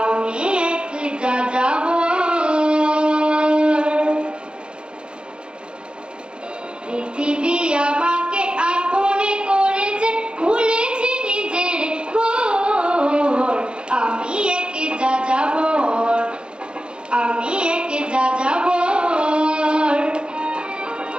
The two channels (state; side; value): late; left; 0.054 ms